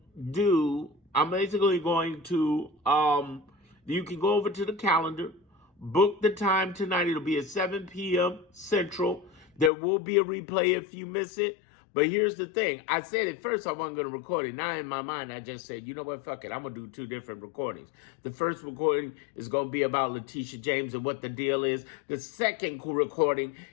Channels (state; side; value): drops out; right; at 9.7 s